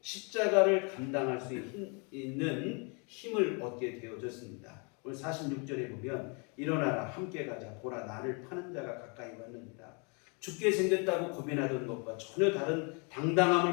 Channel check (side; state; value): right; quieter; 34.3 dB